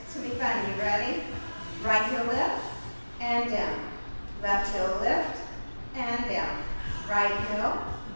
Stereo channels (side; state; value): both; inverted; correlation -1.00